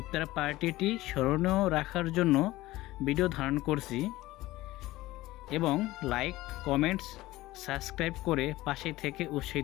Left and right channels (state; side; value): quieter; right; 17.7 dB